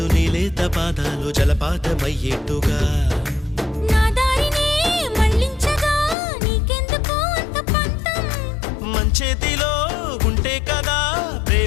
నీలేత పాదాలు జలపాతమయ్యేట్టుగా నా దారినే మళ్ళించగా నీకెందుకు అంత పంతం మంచేతిలో ఉంటే కదా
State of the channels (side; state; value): right; drops out; at 6.2 s